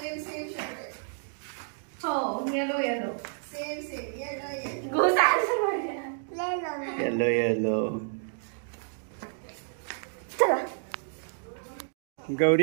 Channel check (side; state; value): left; silent; digital silence